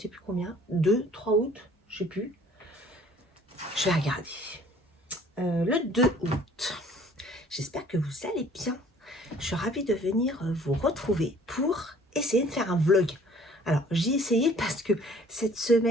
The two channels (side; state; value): both; normal; correlation 0.55